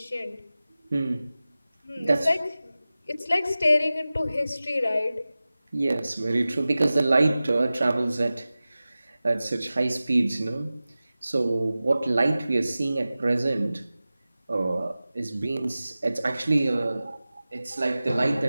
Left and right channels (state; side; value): inverted; both; correlation -0.96